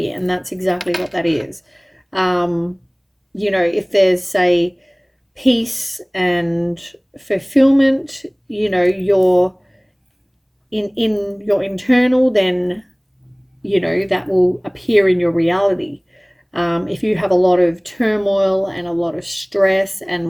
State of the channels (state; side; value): identical; both; correlation 1.00